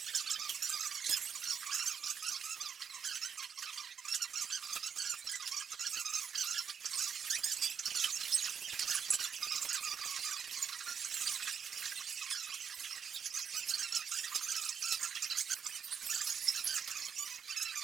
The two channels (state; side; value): quieter; left; 7.2 dB